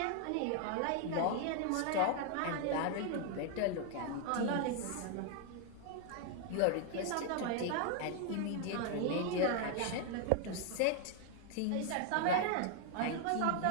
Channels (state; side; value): different; both; correlation 0.00